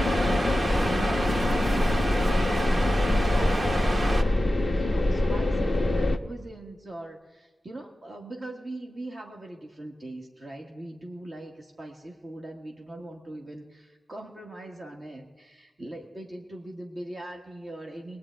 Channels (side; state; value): both; normal; correlation 0.94